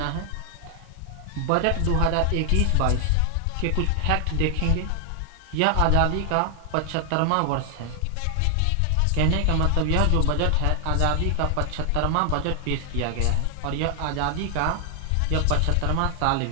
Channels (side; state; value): both; different; correlation 0.00